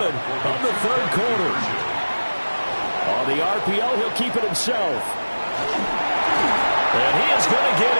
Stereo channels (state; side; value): inverted; both; correlation -1.00